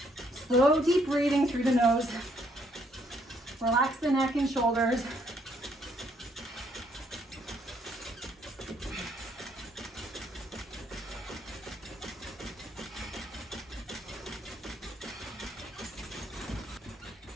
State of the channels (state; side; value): normal; both; correlation 0.70